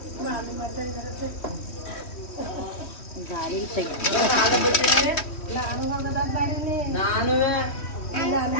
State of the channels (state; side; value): late; right; 3.1 ms